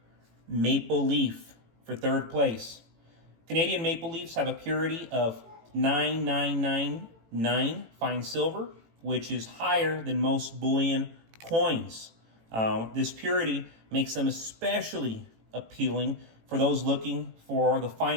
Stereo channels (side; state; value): left; late; 18 ms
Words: Maple Leaf for third place. Canadian maple leafs have a purity of 9999 fine silver, which is higher than most bullion coins. This purity makes them especially appealing for those looking for the